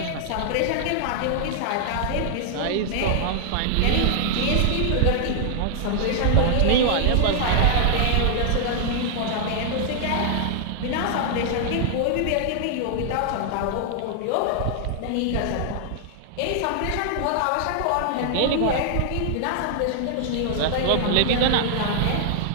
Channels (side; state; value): both; different; correlation -0.01